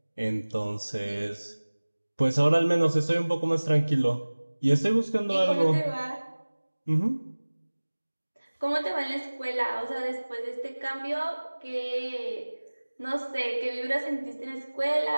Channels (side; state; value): both; inverted; correlation -1.00